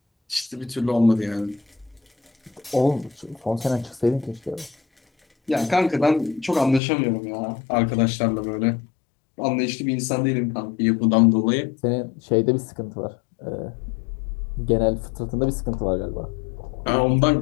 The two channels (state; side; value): drops out; right; at 6.8 s